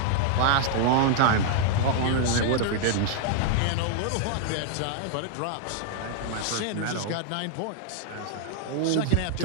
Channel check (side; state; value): both; different; correlation -0.01